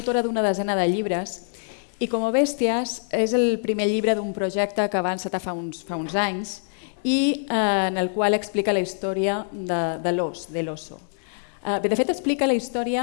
d'una desena de llibres. I Como Bèsties és el primer llibre d'un projecte que va encetar fa uns anys i en el qual explica la història de l'os, de l'oso. De fet, explica la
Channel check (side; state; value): right; silent; digital silence